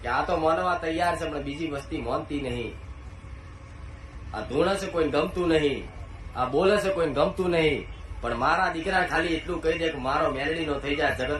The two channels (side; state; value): both; identical; correlation 1.00